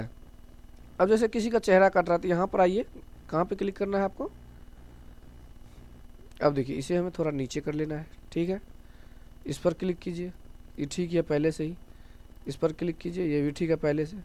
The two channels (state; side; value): identical; both; correlation 1.00